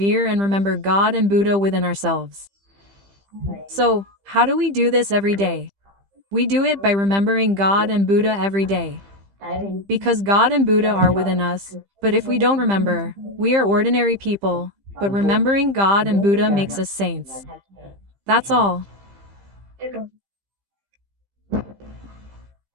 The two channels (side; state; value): left; late; 15 ms